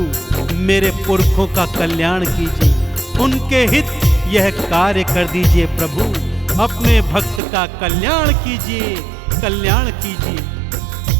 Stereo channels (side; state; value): left; drops out; at 7.4 s